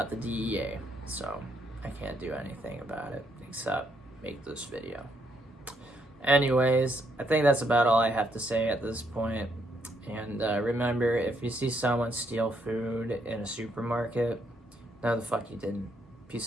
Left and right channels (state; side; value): normal; both; correlation 0.74